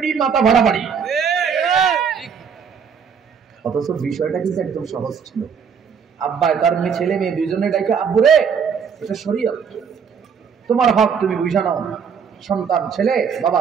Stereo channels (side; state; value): left; quieter; 6.7 dB